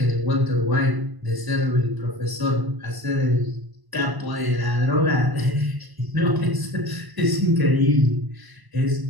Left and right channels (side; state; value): left; late; 1.0 ms